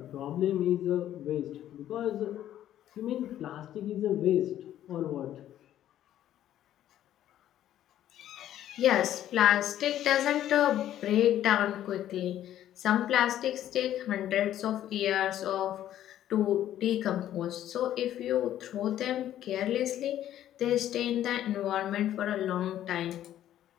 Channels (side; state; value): right; quieter; 11.9 dB